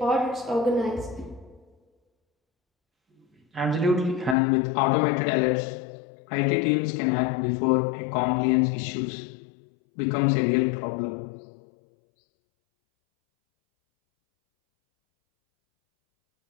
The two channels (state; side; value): drops out; right; at 4.4 s